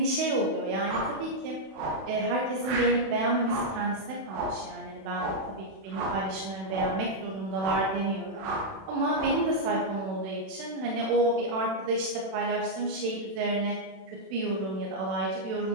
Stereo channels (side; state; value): left; late; 31 ms